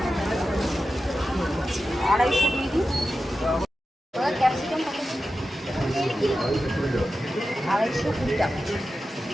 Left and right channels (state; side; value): normal; both; correlation 0.92